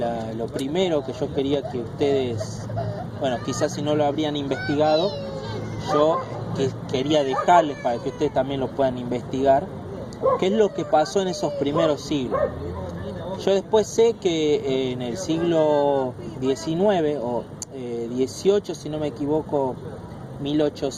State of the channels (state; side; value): identical; both; correlation 1.00